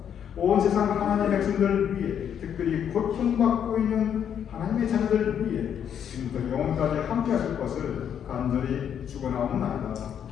온 세상 하나님의 백성들을 위해 특별히 고통받고 있는 하나님의 자녀들을 위해 지금부터 영원까지 함께 하실 것을 간절히 축원하옵나이다.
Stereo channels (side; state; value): right; quieter; 8.7 dB